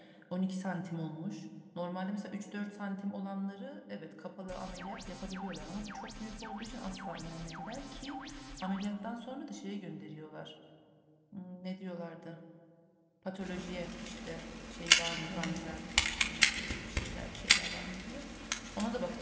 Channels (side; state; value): both; identical; correlation 1.00